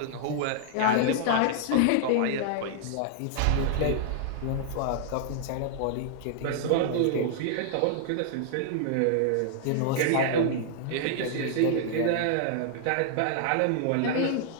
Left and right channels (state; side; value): different; both; correlation -0.01